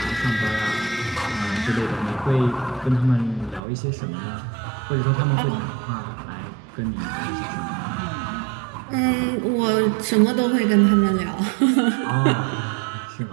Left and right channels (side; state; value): left; drops out; at 3.6 s